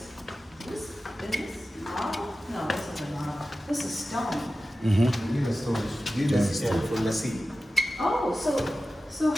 is this marble? No, this isn't marble. This is stone. Mm-hmm. This is for the sea. Oh, so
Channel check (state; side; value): normal; both; correlation 0.94